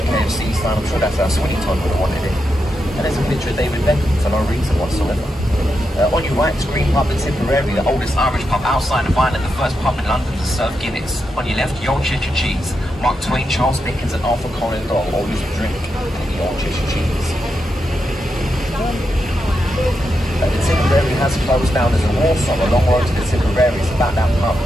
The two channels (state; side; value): normal; both; correlation 0.85